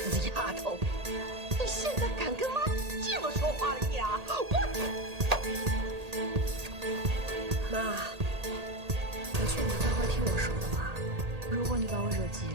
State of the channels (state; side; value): late; left; 1.8 ms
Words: 丫头，你现在敢跟妈这么说话了呀？妈，我劝你乖乖听我说的话。如果你把我惹急